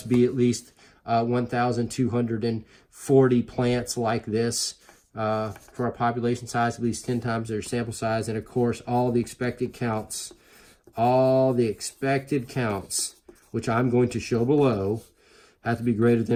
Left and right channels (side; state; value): both; identical; correlation 1.00